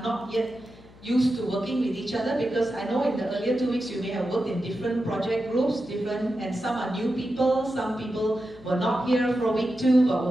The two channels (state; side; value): noise; left; hum, 23 dB below the sound